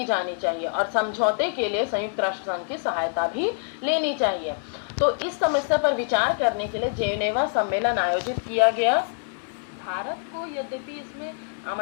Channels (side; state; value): right; silent; 61 dB below the other